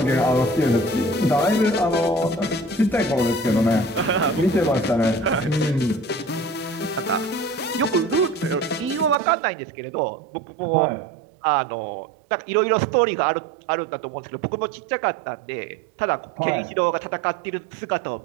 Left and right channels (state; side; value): drops out; left; at 9.2 s